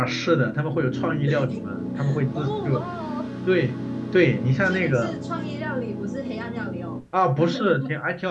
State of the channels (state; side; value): identical; both; correlation 1.00